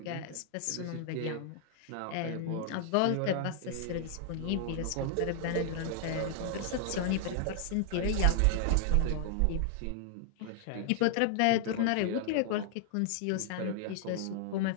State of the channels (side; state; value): both; different; correlation -0.01